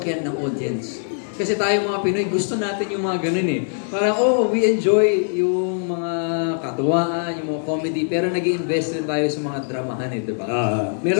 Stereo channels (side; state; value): right; silent; digital silence